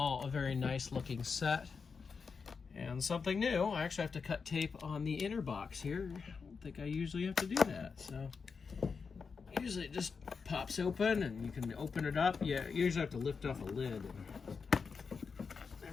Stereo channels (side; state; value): right; quieter; 5.4 dB